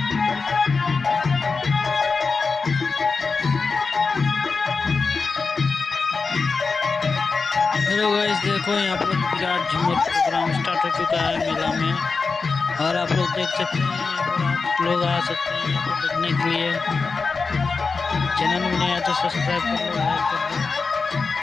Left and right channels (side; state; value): right; quieter; 4.5 dB